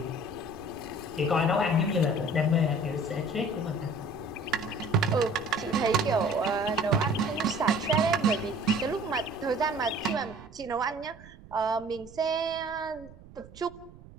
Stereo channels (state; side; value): noise; right; rumble, 20 dB below the sound